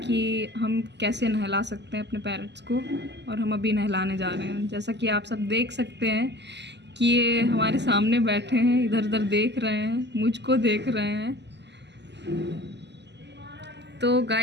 हम कैसे नहला सकते हैं अपने पैरट्स को। और हम अभी नहलाने जा रहे हैं। जैसा कि आप सब देख सकते हैं कि ये हमारे सामने बैठे हैं, इधर उधर देख रहे हैं, मुझको देख रहे हैं। तो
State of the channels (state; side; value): late; left; 0.50 ms